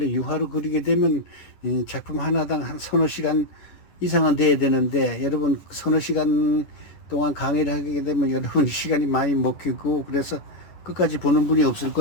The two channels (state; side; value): late; right; 10 ms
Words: 유화로 그리게 되면 이 작품 하나당 한 서너 시간 이상은 돼야 되는데, 여러분 서너 시간 동안 강의를 하게 되면 여러분 시간이 많이 먹히고, 그래서 끝까지 보는 분이 없을